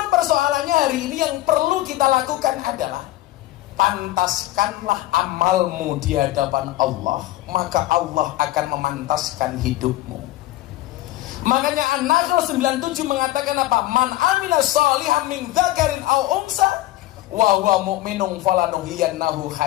persoalannya hari ini yang perlu kita lakukan adalah pantaskanlah amalmu di hadapan Allah, maka Allah akan memantaskan hidupmu. Makanya An-Nahl 97 mengatakan apa? Man amila shalihan min dzakarin aw unsa wa huwa mu'minun falanuhyiyannahu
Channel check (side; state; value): right; quieter; 16.4 dB